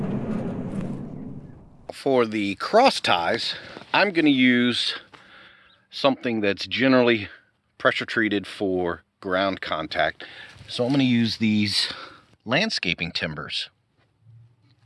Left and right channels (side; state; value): both; identical; correlation 1.00